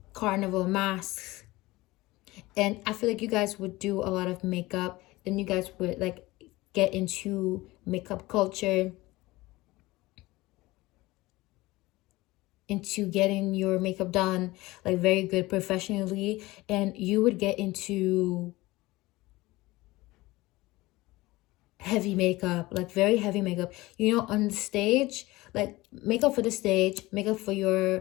carnival masks. And I feel like you guys would do a lot of makeup, and you guys would like get into makeup culture, into getting your makeup done like very good professionally, and you would get into heavy makeup, like very heavy makeup, you know, on the stage, like makeup for the stage, makeup for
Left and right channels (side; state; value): right; quieter; 19.9 dB